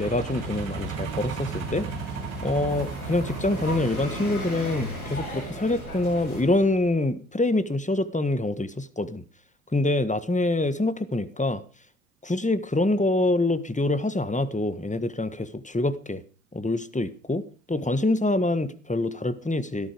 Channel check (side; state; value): both; normal; correlation 0.64